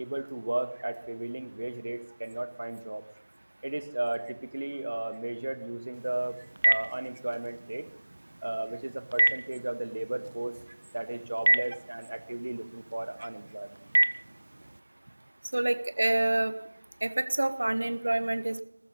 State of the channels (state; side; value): inverted; both; correlation -1.00